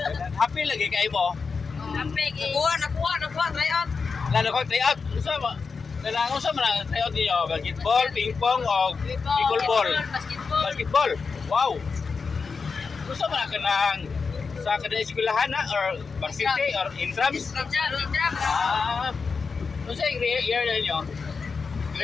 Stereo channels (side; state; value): right; quieter; 5.0 dB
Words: Happy lagi kayo mo. Nakuha, try out. Lalo ko try out. Gusto mo? Kailangan sa mga try out niyo. Basketball, ping pong o pickleball. Basketball. Wow. Gusto mo na ka ng sa kada eskwelahan na or varsity or intrams? Ah. Ano sa year na niyo?